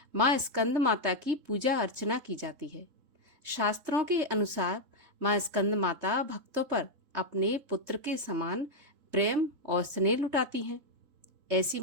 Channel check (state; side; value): late; left; 3.7 ms